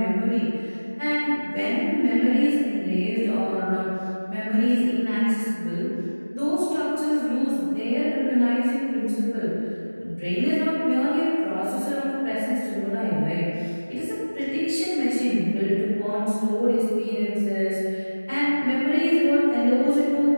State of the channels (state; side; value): inverted; both; correlation -1.00